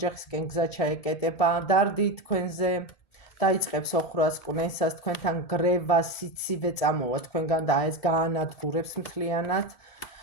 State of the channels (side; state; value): right; late; 1.7 ms